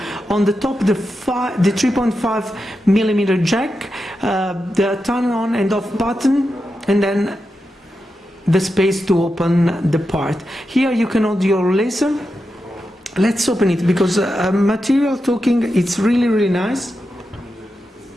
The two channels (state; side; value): normal; both; correlation 0.88